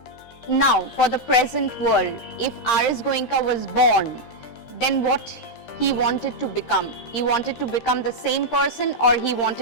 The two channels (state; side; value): late; right; 13 ms